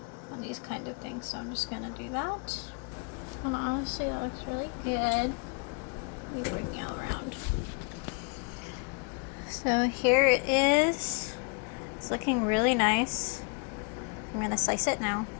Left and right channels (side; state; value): right; quieter; 37.6 dB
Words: on these kind of things. So I'm just gonna do that. And honestly, that looks really good. Let me bring you around. So here it is. It's looking really nice. I'm gonna slice it now.